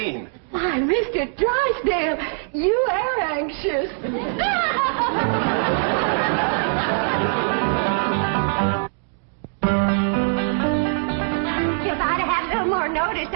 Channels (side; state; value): left; silent; digital silence